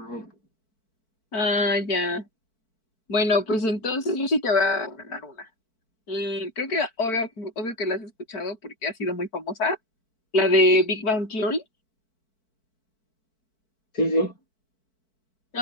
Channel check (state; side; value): late; right; 4.6 ms